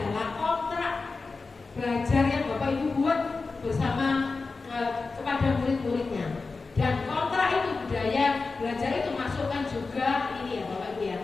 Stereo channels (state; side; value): quieter; right; 4.1 dB